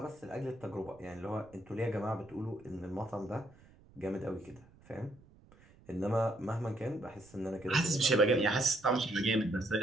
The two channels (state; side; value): noise; right; rumble, 25 dB below the sound